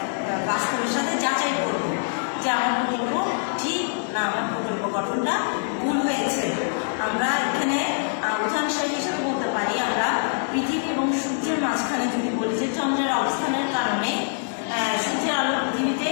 সাথে যাচাই করব যে আমার প্রকল্প ঠিক না আমার প্রকল্প গঠনটা ভুল হয়েছে। আমরা এখানে উদাহরণ হিসেবে বলতে পারি, আমরা পৃথিবী এবং সূর্যের মাঝখানে যদি বলি যে চন্দ্রের অবস্থানের কারণে সূর্যের আলো পৃথিবীতে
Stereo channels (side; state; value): right; silent; digital silence